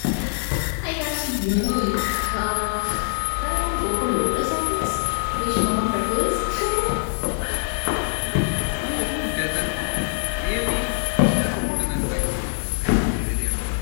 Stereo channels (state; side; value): silent; right; digital silence